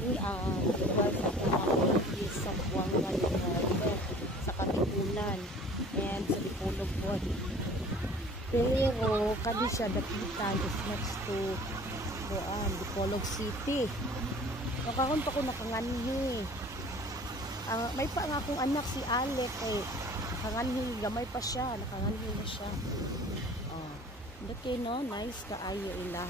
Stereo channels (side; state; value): both; normal; correlation 0.47